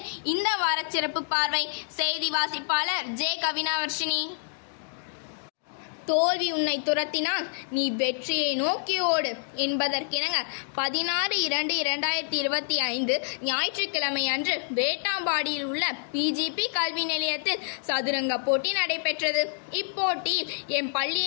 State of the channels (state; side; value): silent; right; digital silence